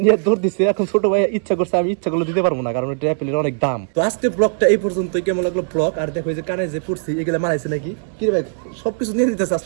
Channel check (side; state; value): left; silent; 66 dB below the other